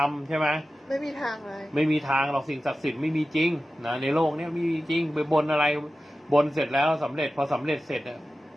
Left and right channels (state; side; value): normal; both; correlation 0.94